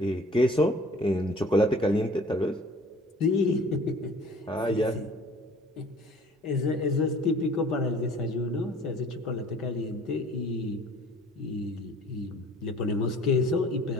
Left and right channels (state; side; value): normal; both; correlation 0.50